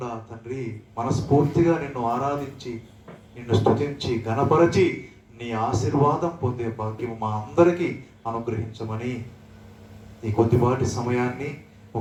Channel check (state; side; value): identical; both; correlation 1.00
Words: తండ్రి, మనస్ఫూర్తిగా నిన్ను ఆరాధించి, నిన్ను స్తుతించి, ఘనపరచి నీ ఆశీర్వాదం పొందే భాగ్యం మా అందరికీ అనుగ్రహించమని, ఈ కొద్దిపాటి సమయాన్ని